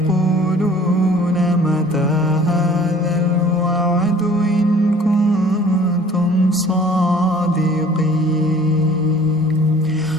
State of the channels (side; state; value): both; normal; correlation 0.51